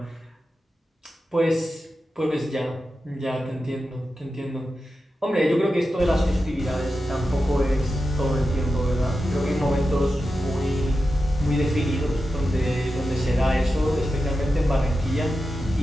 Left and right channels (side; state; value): both; normal; correlation 0.91